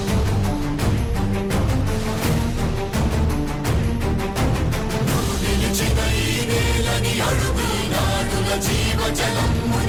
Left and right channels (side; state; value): both; identical; correlation 1.00